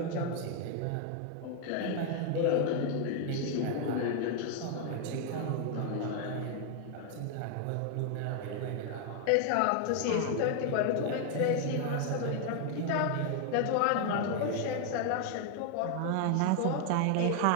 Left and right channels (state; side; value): different; both; correlation 0.00